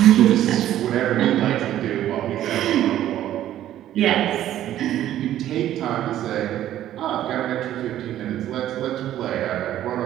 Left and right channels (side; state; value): left; quieter; 12.4 dB